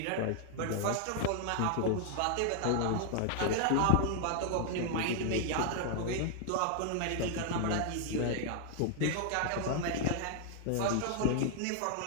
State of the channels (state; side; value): different; both; correlation 0.00